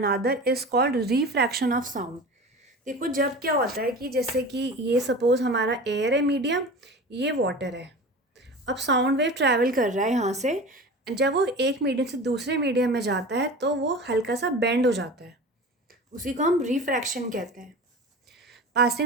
is called refraction of sound. देखो, जब क्या होता है कि जैसे कि ये सपोज हमारा एयर है मीडियम, ये वाटर है। अब साउंड वेव ट्रैवल कर रहा है यहाँ से। जब वो एक मीडियम से दूसरे मीडियम में जाता है तो वो हल्का सा बेंड हो जाता है, उसी को हम रिफ्रैक्शन कहते हैं।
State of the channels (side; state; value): both; normal; correlation 0.34